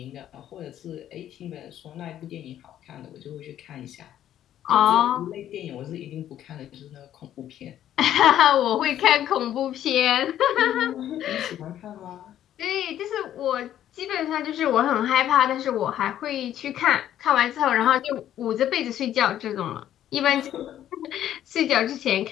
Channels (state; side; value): quieter; right; 11.4 dB